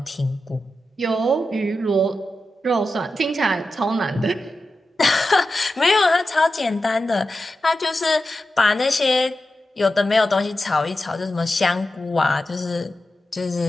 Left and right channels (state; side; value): normal; both; correlation 0.91